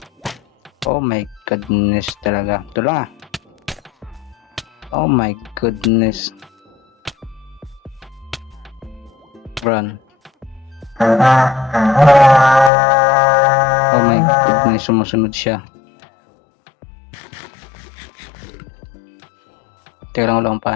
Oh my goodness talaga. Ito lang ah. Oh my goodness. Run. Oh my goodness, sumusunod siya. Teka lang, wala akong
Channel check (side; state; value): right; drops out; at 12.7 s